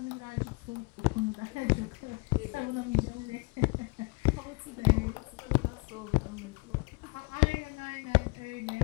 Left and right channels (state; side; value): quieter; right; 29.5 dB